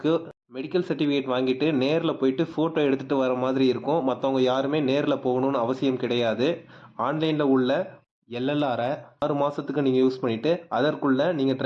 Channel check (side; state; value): both; identical; correlation 1.00